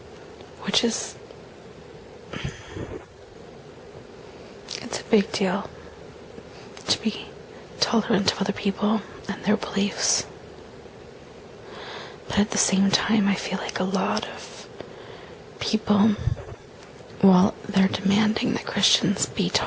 which is, it's a big deal to be tolerant of other people and their beliefs. But at the same time, I feel like a lot of people, while they're demanding that Christians be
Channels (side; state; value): both; identical; correlation 1.00